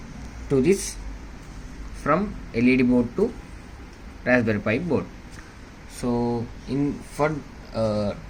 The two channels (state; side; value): identical; both; correlation 1.00